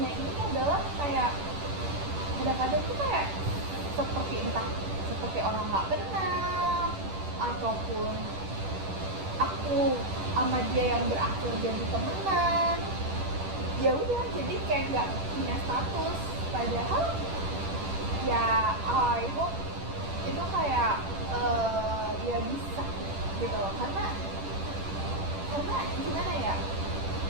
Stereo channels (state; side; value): late; left; 10 ms